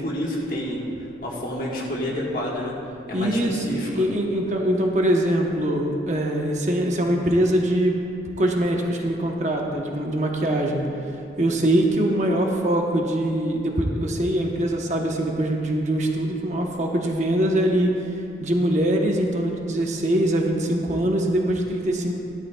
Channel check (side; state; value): left; noise; rumble, 28 dB below the sound